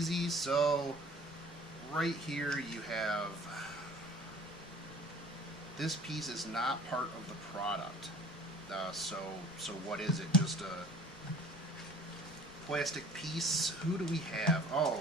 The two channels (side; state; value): left; noise; rumble, 21 dB below the sound